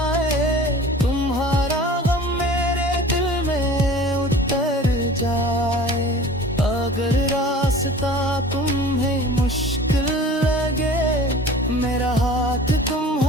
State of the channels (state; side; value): normal; both; correlation 0.43